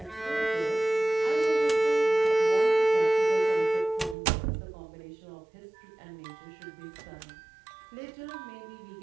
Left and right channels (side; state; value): left; drops out; at 4.2 s